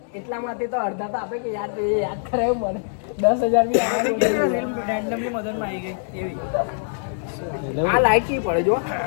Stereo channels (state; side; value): silent; right; digital silence